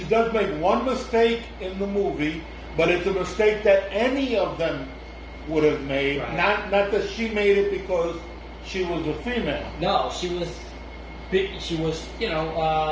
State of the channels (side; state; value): both; identical; correlation 1.00